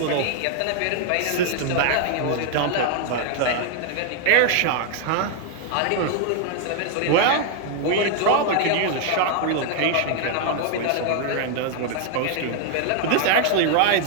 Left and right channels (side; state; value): both; different; correlation 0.00